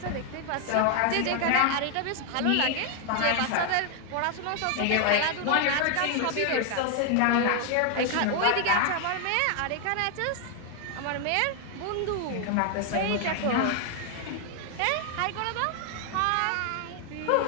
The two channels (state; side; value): different; both; correlation 0.00